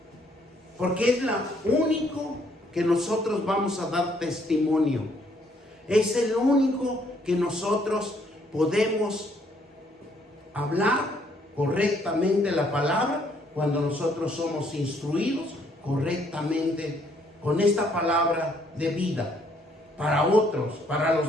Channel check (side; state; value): both; normal; correlation 0.67